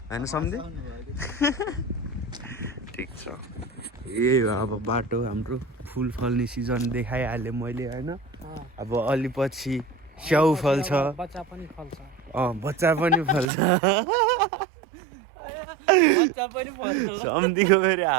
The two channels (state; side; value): drops out; left; at 13.5 s